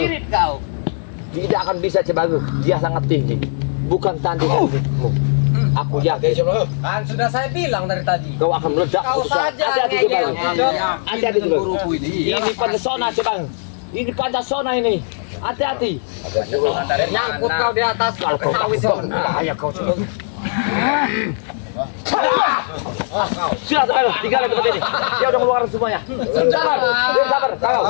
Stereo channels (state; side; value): silent; right; 58 dB below the other